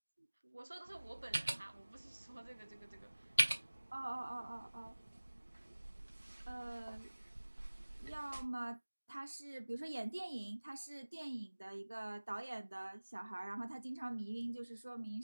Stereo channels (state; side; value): inverted; both; correlation -1.00